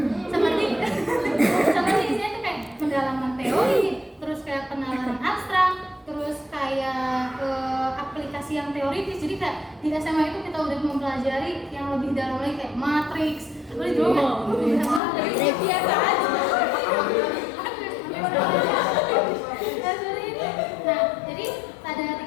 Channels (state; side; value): drops out; right; at 15.0 s